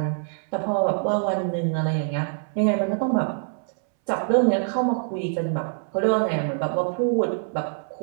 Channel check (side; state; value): left; silent; 62 dB below the other